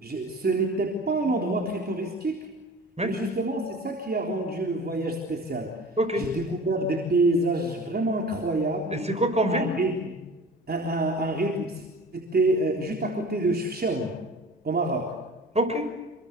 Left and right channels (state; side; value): normal; both; correlation 0.40